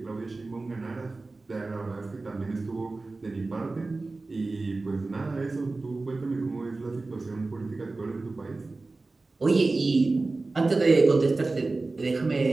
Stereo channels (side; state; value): left; quieter; 3.4 dB